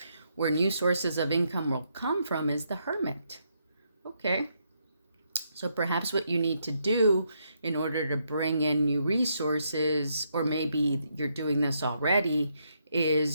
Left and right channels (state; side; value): inverted; both; correlation -0.77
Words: Where new sources of income will come from is the Hermit, okay? So perhaps what you need to do in order to bring in new resources, or maybe you're doing this already,